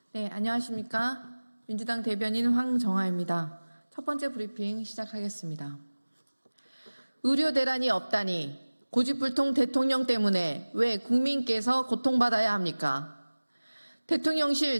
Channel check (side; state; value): both; inverted; correlation -1.00